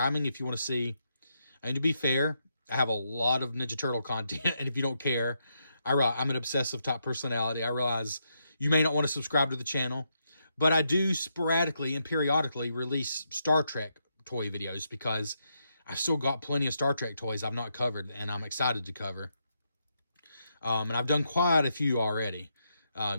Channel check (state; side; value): inverted; both; correlation -0.81